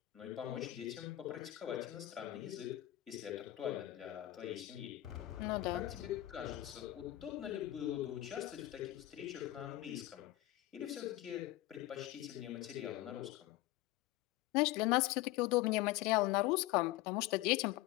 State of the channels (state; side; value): quieter; right; 16.3 dB